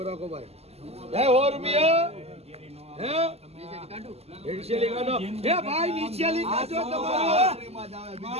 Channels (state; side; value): late; left; 0.30 ms